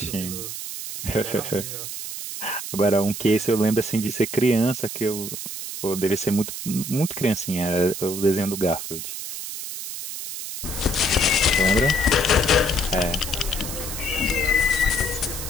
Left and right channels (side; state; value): right; noise; hiss, 7 dB below the sound